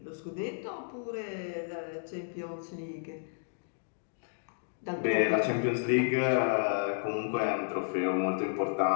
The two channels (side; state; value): right; silent; digital silence